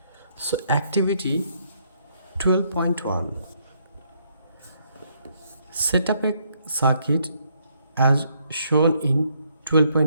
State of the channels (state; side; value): inverted; both; correlation -0.71